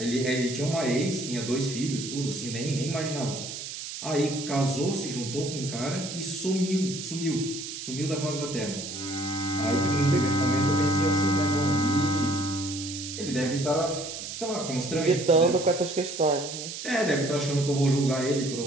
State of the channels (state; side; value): noise; right; hiss, 8 dB below the sound